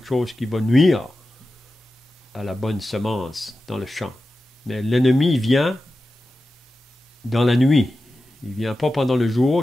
chose qui va nuire à la bonne semence dans le champ. Mais l'ennemi vient dans la nuit. Il ne vient pas pendant le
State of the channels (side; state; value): both; normal; correlation 0.93